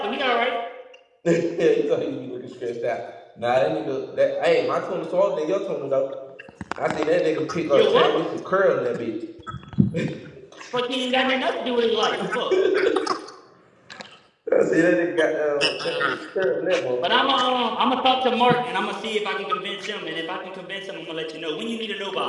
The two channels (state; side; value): identical; both; correlation 1.00